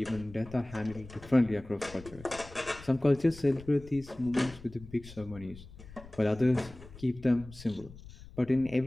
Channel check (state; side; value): noise; left; rumble, 18 dB below the sound